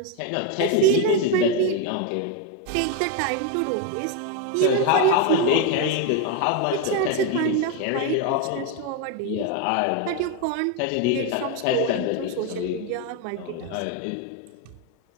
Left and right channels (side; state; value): both; different; correlation 0.02